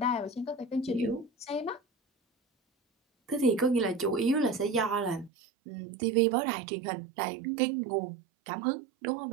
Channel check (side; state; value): left; drops out; at 5.3 s